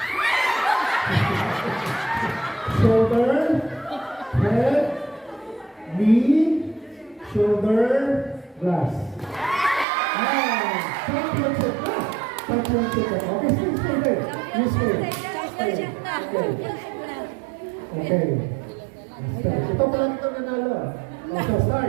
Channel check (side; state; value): left; drops out; at 9.9 s